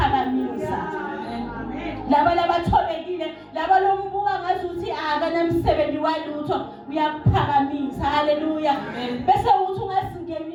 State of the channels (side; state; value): both; identical; correlation 1.00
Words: laba labathobekile laba lombuka ngazuthi akanamsebenzi walutho uyaphakamisa haleluya bese uthi